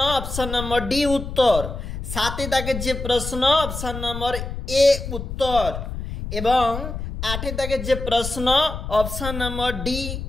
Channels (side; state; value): left; noise; rumble, 7 dB below the sound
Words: অপশন নম্বর ডি উত্তর। 7-এর দাগের যে প্রশ্ন অপশন নম্বর এ উত্তর এবং 8-এর দাগের যে প্রশ্ন অপশন নম্বর ডি